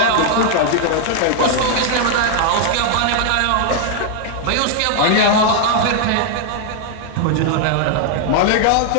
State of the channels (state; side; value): different; both; correlation 0.00